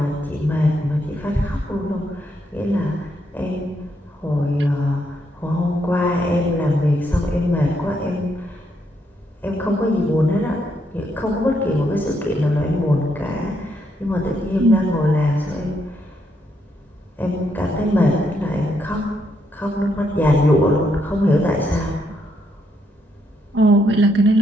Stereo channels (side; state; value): both; normal; correlation 0.76